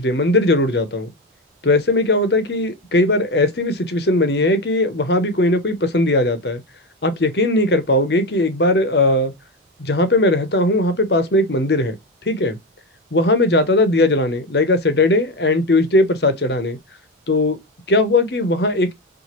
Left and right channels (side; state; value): both; normal; correlation 0.16